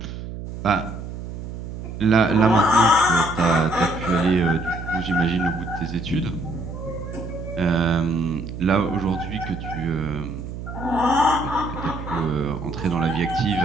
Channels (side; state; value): right; noise; hum, 9 dB below the sound